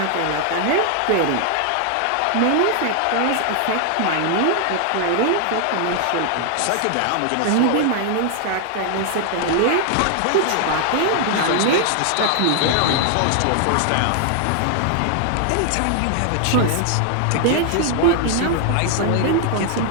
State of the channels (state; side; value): different; both; correlation 0.00